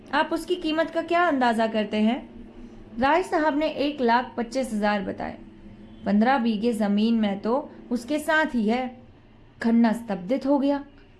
आप उसकी कीमत का क्या अंदाजा करते हैं? राय साहब ने 1,25,000 बताए। 15 बीघे जमीन में तो उसके साथ ही है। खन्ना स्तब्धित हो गया,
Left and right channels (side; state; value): both; identical; correlation 1.00